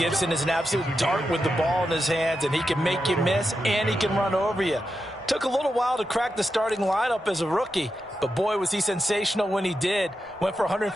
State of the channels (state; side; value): normal; both; correlation 0.88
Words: is an absolute dart with the ball in his hands, and he can make you miss, and he can run over you. Took a little while to crack the starting lineup as a rookie, but boy, was he sensational when he did. Went for